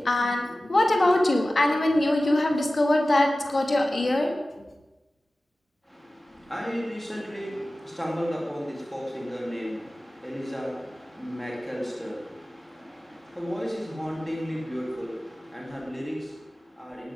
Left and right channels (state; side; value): normal; both; correlation 0.96